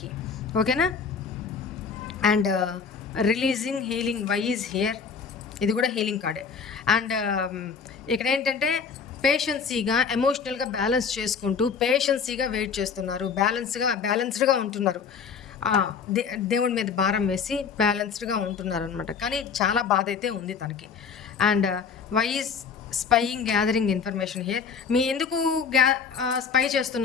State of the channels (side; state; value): right; quieter; 6.0 dB